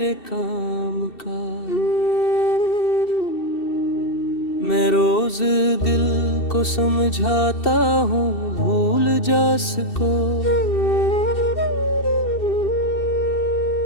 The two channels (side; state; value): right; late; 2.7 ms